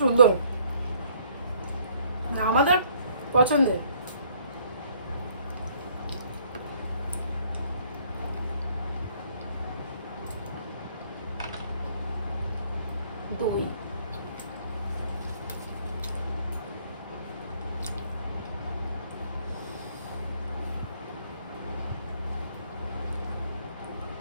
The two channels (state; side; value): inverted; both; correlation -0.63